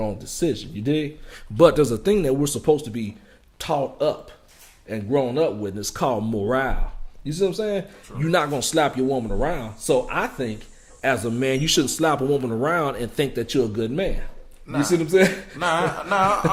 decision. You dig? But there's a thing that we're supposed to be taught up and grown up with, and it's called morale. You see what I'm saying? True. You're not going to slap your woman around. So I think, as a man, you shouldn't slap a woman around and think that you're a good man. You see what I'm saying?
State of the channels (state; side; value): identical; both; correlation 1.00